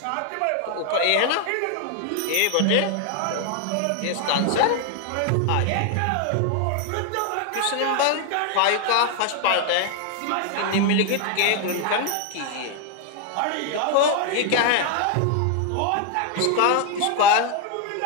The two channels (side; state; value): both; different; correlation 0.00